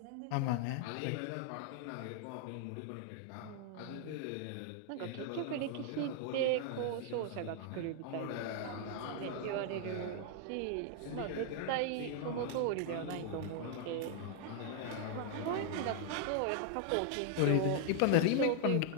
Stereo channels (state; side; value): different; both; correlation 0.00